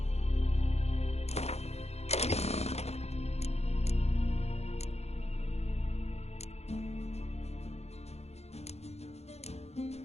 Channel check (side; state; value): right; late; 0.31 ms